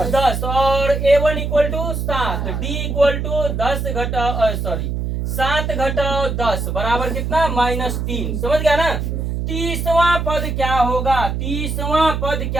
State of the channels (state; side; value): noise; right; hum, 2 dB below the sound